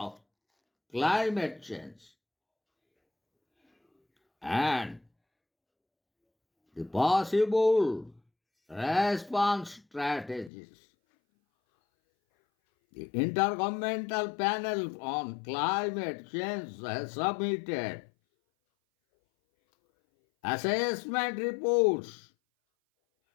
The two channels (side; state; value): right; drops out; at 10.5 s